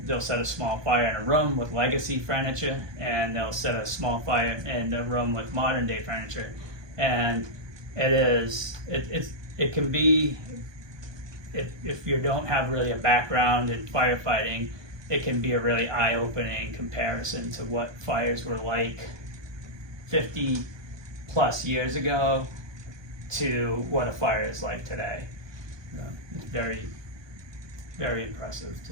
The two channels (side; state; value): left; late; 1.2 ms